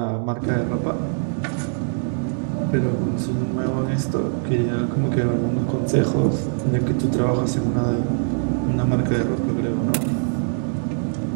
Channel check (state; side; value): silent; left; 64 dB below the other